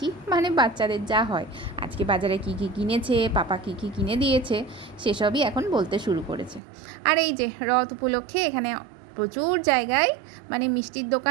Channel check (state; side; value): drops out; left; at 6.6 s